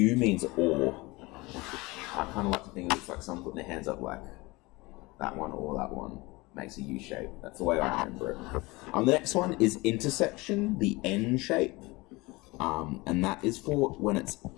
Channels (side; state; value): right; quieter; 23.0 dB